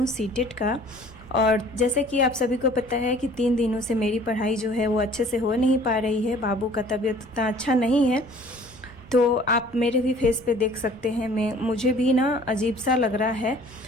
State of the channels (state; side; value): noise; left; rumble, 29 dB below the sound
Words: सीटेट का। और जैसे कि आप सभी को पता है कि 3 दिनों से मेरी पढ़ाई जो है वो अच्छे से हो नहीं पा रही है। बाबू का तबीयत उतना अच्छा नहीं है, तो आप मेरे भी फेस पे देख सकते हैं, मुझे भी ना अजीब सा लग रहा है।